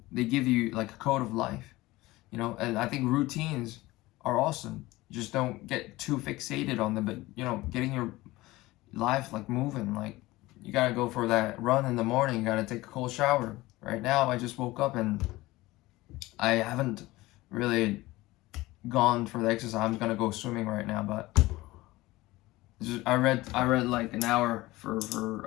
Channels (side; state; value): right; quieter; 19.2 dB